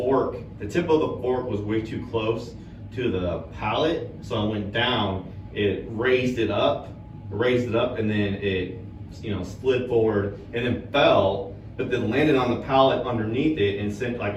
tip of the fork was way too close to the pallet. So I went down, it raised it up, and then it, slid forward and then fell, but then landed on the pallet underneath it and sent like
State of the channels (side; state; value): both; identical; correlation 1.00